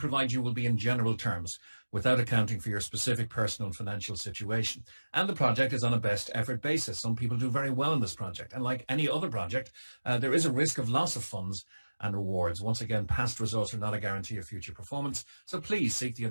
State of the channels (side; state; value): both; inverted; correlation -1.00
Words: you will be in general terms, without accounting for your specific personal and financial situation. And the project is on a best effort basis. Some people do very well in this project. And like any other project, there is a risk of loss of funds and rewards. Once again, past results are not a guarantee of future performance. So please seek the